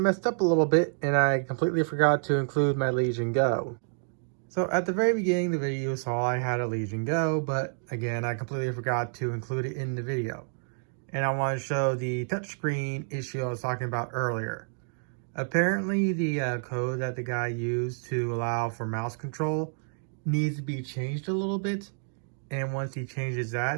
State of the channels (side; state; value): left; silent; digital silence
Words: up a little bit and I completely forgot to include my Legion Go. So at the very beginning of the video, you saw I had a Legion Go, but again, I completely forgot to include it in the video. And I want to show the touchscreen issue I was talking about earlier. Apparently the code that the guy used to allow for mouse control needs to be changed a little bit. And once he changes